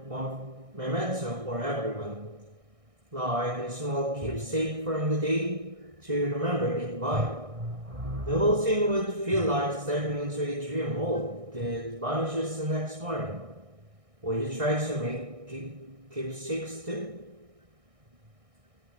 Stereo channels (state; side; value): late; left; 1.6 ms